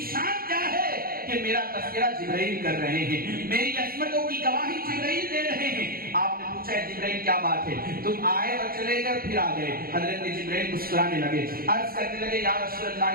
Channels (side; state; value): left; late; 0.43 ms